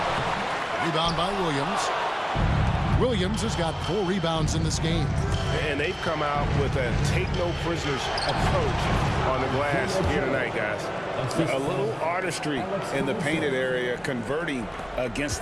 Rebound by Williams. Williams has got 4 rebounds in this game. And they've come out with a take-no-prisoners approach on the glass here tonight, guys. A little artistry in the painted area, converting against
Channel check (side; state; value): both; identical; correlation 1.00